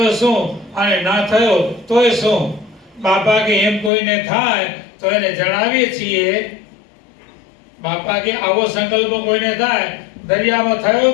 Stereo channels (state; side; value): drops out; right; at 3.9 s